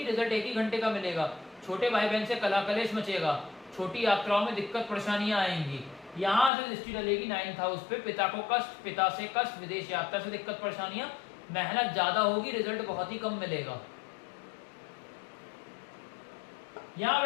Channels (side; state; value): right; drops out; at 6.5 s